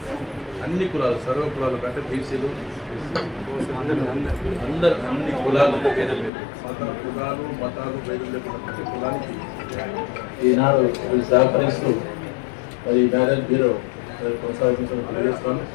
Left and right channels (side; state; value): right; drops out; at 6.3 s